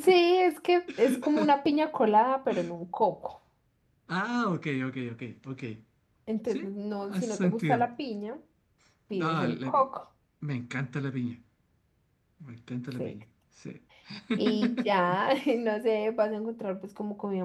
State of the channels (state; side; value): identical; both; correlation 1.00